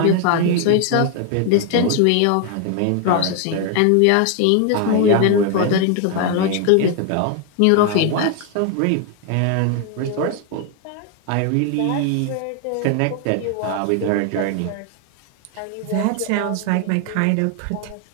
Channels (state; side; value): different; both; correlation 0.01